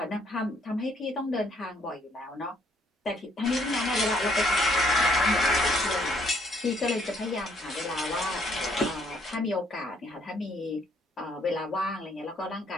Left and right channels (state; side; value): normal; both; correlation 0.67